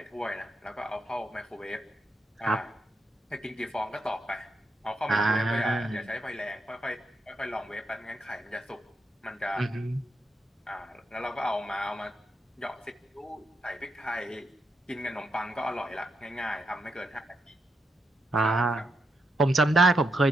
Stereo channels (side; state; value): both; normal; correlation 0.82